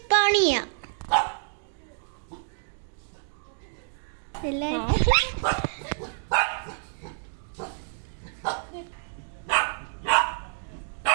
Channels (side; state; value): left; silent; digital silence